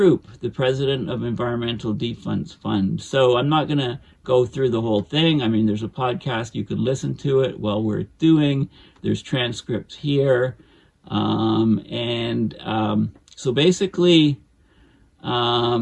the president of Environmental Defense Fund. So I'm not going to go through the whole thing. I mean, there's a podcast. You can listen to it while we're doing. There's transcripts here. So basically,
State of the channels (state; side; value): identical; both; correlation 1.00